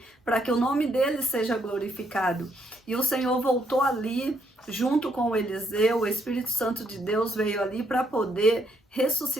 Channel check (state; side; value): normal; both; correlation 0.74